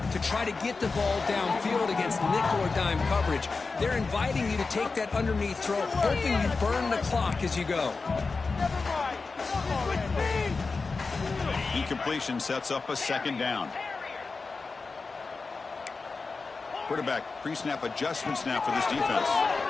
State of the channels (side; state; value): right; quieter; 4.2 dB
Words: to try to get the ball downfield against nickel or dime coverage. They're inviting you to take that underneath throw, hoping you burn the clock as you go. Incompletion sets up a second down. Quarterback pre-snap adjustments now for this defense.